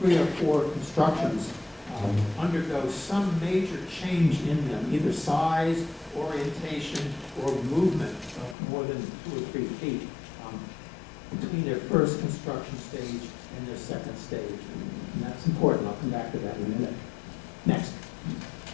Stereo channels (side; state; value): right; drops out; at 8.6 s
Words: 3 or 4 constructions undergo some major change in them, either size, orientation, or movement of more than 2 or 3 feet between their first construction stage and their second stage. And that's important. I'll come back to that in a minute. Next.